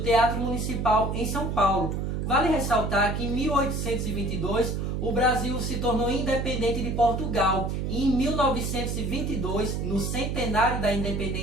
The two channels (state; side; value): noise; right; hum, 2 dB below the sound